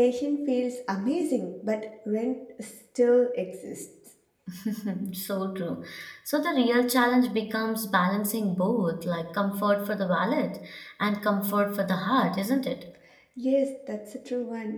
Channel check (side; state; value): both; identical; correlation 1.00